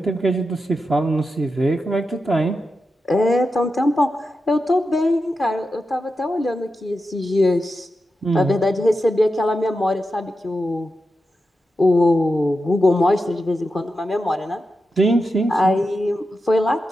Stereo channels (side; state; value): both; normal; correlation 0.89